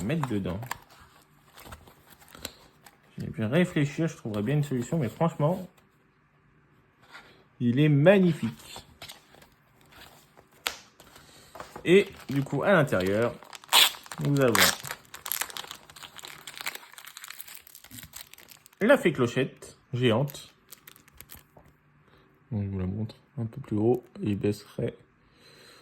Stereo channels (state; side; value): identical; both; correlation 1.00